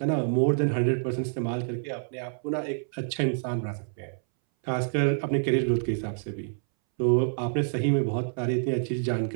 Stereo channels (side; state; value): left; silent; 60 dB below the other